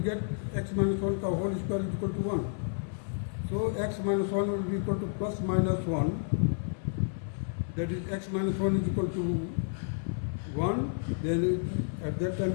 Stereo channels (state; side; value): silent; right; 57 dB below the other